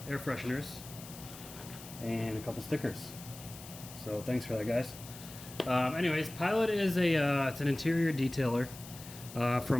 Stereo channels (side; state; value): left; noise; hiss, 15 dB below the sound